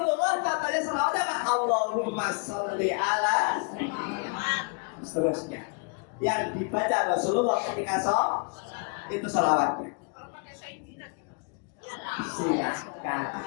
contohnya selawat apa? Allahumma sholli ala seterusnya. Yang dibaca Rasulullah ketika sholat itu selawatnya. Silakan.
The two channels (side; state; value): right; quieter; 34.3 dB